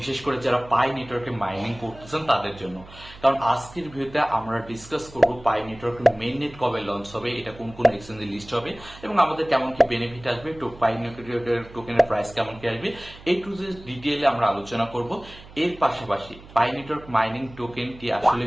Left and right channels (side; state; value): right; noise; hum, 19 dB below the sound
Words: বিশেষ করে যারা পাই নেটওয়ার্কে মাইনিং করতেছেন তাদের জন্য। কারণ আজকের ভিডিওতে আমরা ডিসকাস করব পাই নেটওয়ার্কের মেইন নেট কবে লঞ্চ হবে, এটা কোন কোন এক্সচেঞ্জে লিস্ট হবে এবং আমাদের কেমন কি বেনিফিট আসবে, পাই নেটওয়ার্কের টোকেনের প্রাইস কেমন কি আসবে, এই টু যে ডিটেইলে আমরা আলোচনা করব। এর পাশাপাশি পাই নেটওয়ার্ক মাইনিং টোকেনটি আসলে